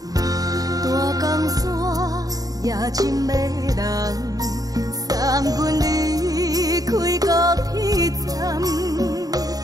阮离开高铁站，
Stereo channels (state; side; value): late; left; 0.18 ms